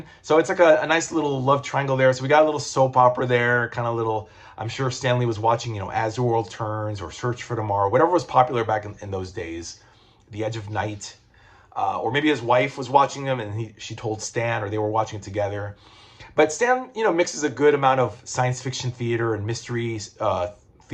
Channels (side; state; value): both; identical; correlation 1.00